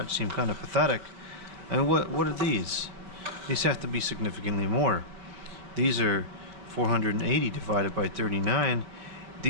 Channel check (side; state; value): left; late; 5.1 ms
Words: seemed kind of pathetic. And what are these? These have to be significantly more. These are 480 divided by 39.